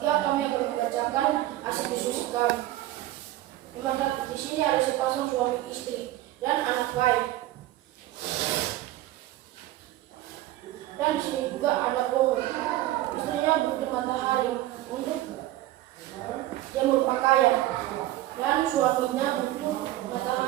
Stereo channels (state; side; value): quieter; left; 15.2 dB